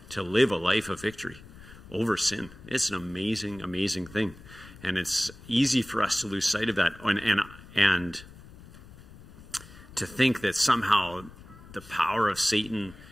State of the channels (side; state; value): left; noise; rumble, 19 dB below the sound